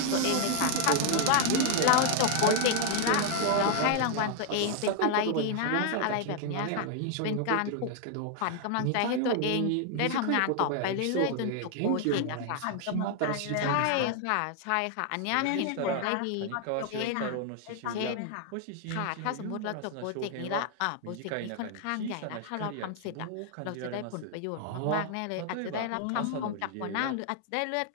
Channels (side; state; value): both; different; correlation 0.00